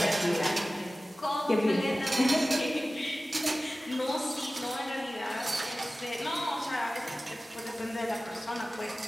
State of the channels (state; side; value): normal; both; correlation 0.96